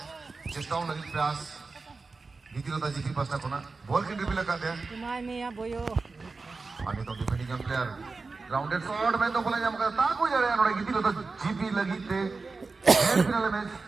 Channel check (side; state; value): left; quieter; 4.0 dB